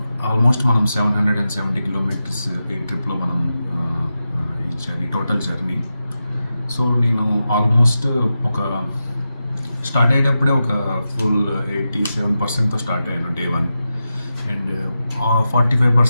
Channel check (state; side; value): inverted; both; correlation -0.90